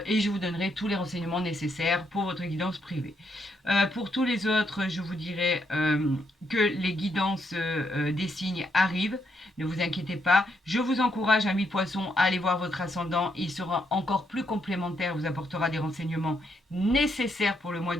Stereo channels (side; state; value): both; normal; correlation 0.77